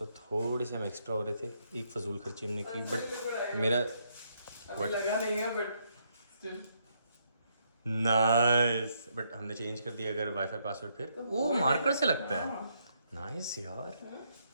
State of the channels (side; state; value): both; inverted; correlation -0.75